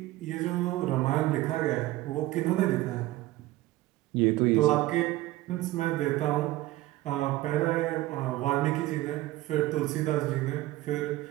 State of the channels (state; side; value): quieter; left; 17.0 dB